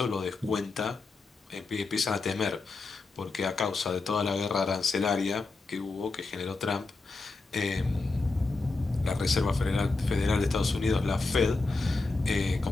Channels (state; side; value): quieter; right; 3.7 dB